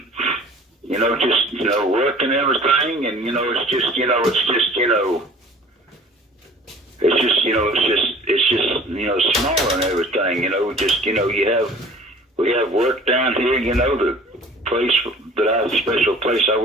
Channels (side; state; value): both; normal; correlation 0.47